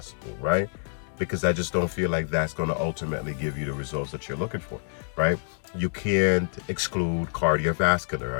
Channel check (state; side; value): silent; right; 59 dB below the other